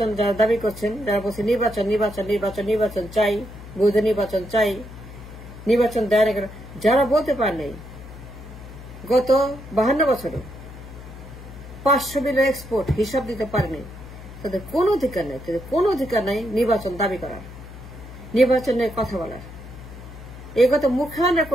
যারা দাবি করছেন, যারা বলছে নির্বাচন নির্বাচন নির্বাচন নির্বাচন চাই, বৈধ নির্বাচন চাই, নির্বাচন দেয় না, যারা বলতে পারেন গত 52 বছরে 500 বিলিয়ন এক্সপোর্ট হিসাব দিতে পারেনি, তাদের কোনো অধিকার নেই, তাদের কোনো অধিকার নাই নির্বাচন দাবি করার, নির্বাচনের কথা বলার। এই কথা মুখে আনার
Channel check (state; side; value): noise; left; hum, 15 dB below the sound